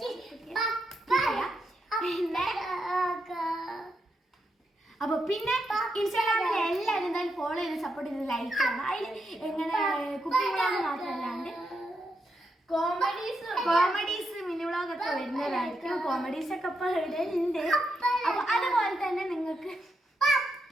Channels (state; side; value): normal; both; correlation 0.83